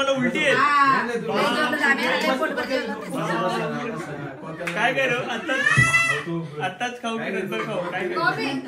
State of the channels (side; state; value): both; identical; correlation 1.00